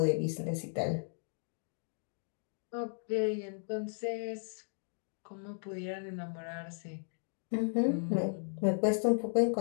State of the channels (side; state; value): right; silent; digital silence